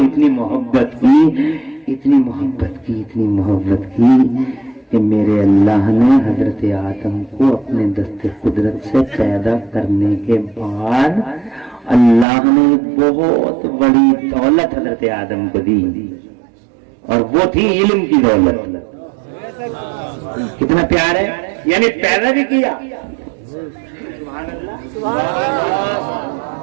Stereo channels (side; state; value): left; drops out; at 12.2 s